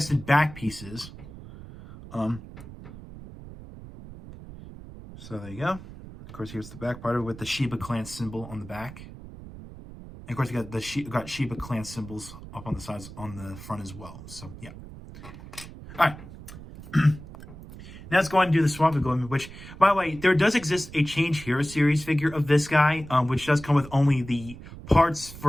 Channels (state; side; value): noise; right; rumble, 15 dB below the sound